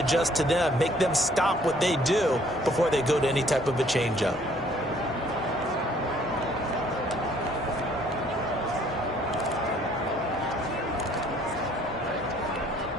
to them. Make them stop what they do before they go to any type of a changeup.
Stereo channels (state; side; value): normal; both; correlation 0.60